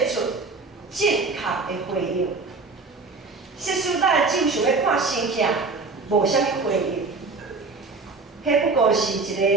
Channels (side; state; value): left; quieter; 4.0 dB